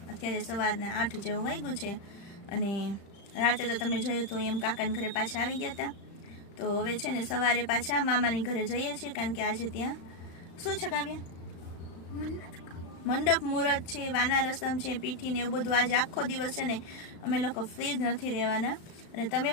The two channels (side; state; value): right; late; 35 ms